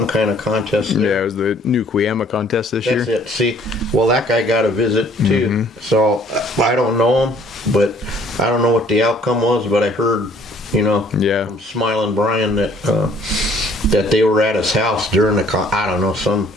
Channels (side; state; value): both; normal; correlation 0.58